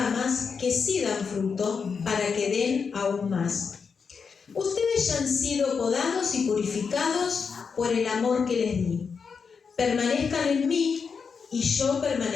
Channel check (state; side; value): quieter; right; 5.7 dB